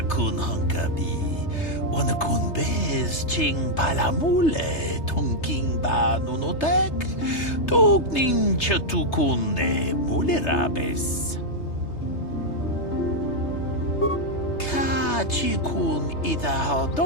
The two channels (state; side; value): late; right; 3.3 ms